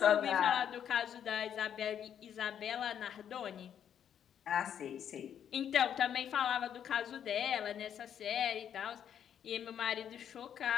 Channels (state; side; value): quieter; right; 9.1 dB